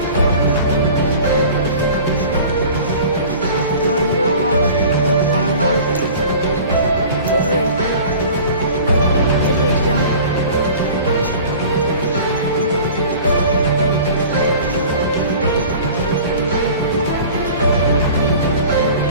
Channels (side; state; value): both; inverted; correlation -0.42